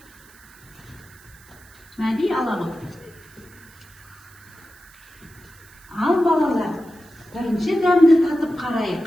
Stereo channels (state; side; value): noise; right; hiss, 25 dB below the sound